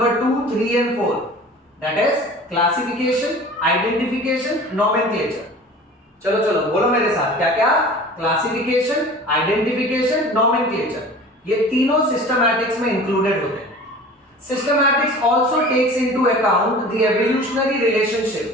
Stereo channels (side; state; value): both; normal; correlation 0.41